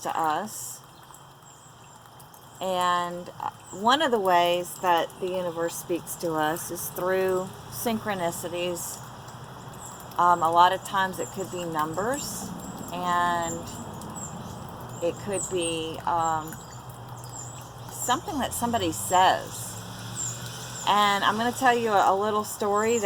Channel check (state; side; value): identical; both; correlation 1.00